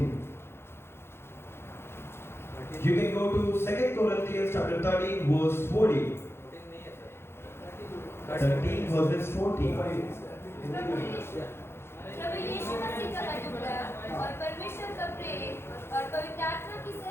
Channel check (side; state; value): right; late; 0.12 ms